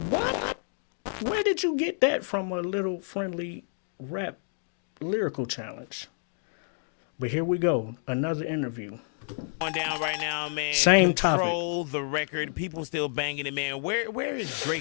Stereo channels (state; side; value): silent; right; 57 dB below the other